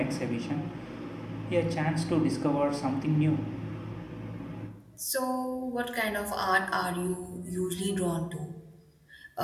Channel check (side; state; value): both; identical; correlation 1.00